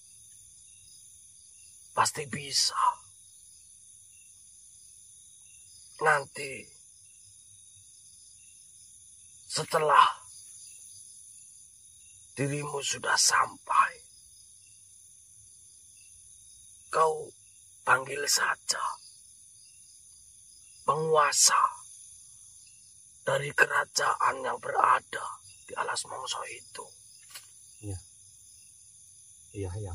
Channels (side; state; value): both; identical; correlation 1.00